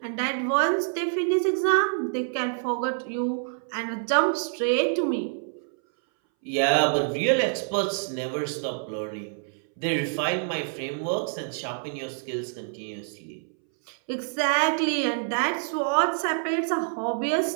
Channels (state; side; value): silent; left; 60 dB below the other